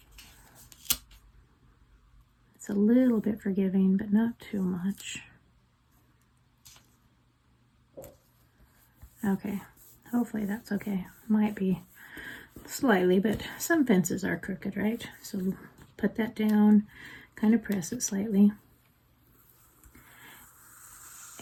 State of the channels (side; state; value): both; identical; correlation 1.00